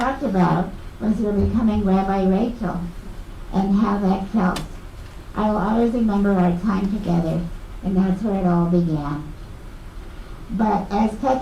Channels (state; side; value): identical; both; correlation 1.00